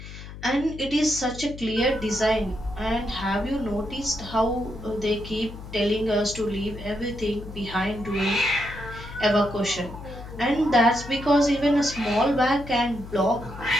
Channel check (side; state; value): left; noise; hum, 13 dB below the sound